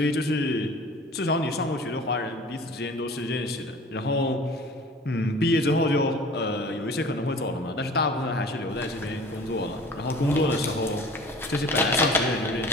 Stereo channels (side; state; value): both; normal; correlation 0.44